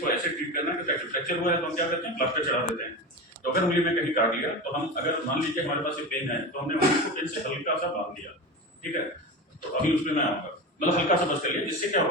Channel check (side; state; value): both; normal; correlation 0.25